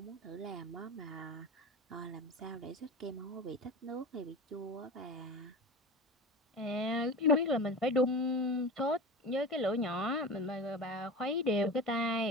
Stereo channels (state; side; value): normal; both; correlation 0.30